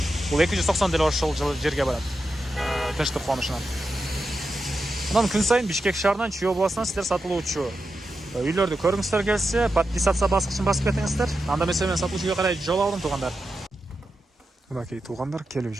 бул 290 деле ошол жерге барат. Тынчтык конушунан. Анан күн сайын Бишкек шаарынан Чүй областынан сиздер сатылуучу үйлөрдү көргүңүздөр келсе, подписаться баскычын басып кетиңиздер. Анда мен сатылуучу үйгө карай жол алдым тугандар. Мынакей тугандар, келүү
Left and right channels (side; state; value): both; normal; correlation 0.89